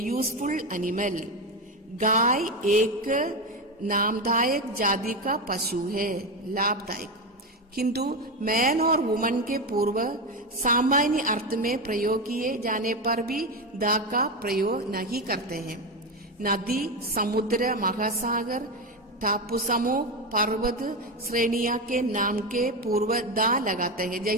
animal, गाय एक नामदायक जाति का पशु है, लाभदायक। किंतु मैन और वुमन के पूर्व सामान्य अर्थ में प्रयोग किए जाने पर भी द का प्रयोग नहीं करते हैं। नदी, समुद्र, महासागर, टापू समूह, पर्वत श्रेणियां के नाम के पूर्व द लगाते हैं।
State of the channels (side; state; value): both; normal; correlation 0.15